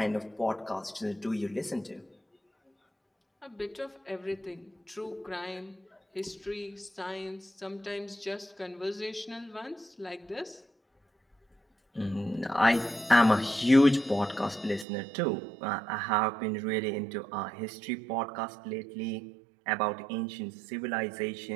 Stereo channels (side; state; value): left; drops out; at 14.9 s